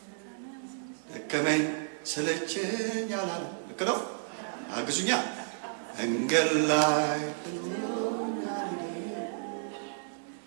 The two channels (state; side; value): silent; left; digital silence